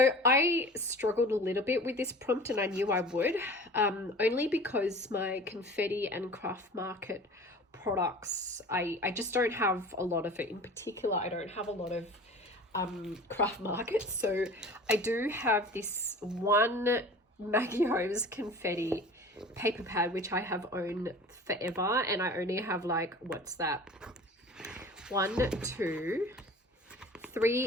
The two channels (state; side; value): normal; both; correlation 0.41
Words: I struggled a little bit with this prompt, and I knew I would, only because my Confetti and Craft Market products, I just don't have a lot of it. In particular, I don't have a lot of Craft Market. So I do have this one Maggie Holmes Confetti paper pad, which I have owned forever, and I only have like, what's that, 1, 2,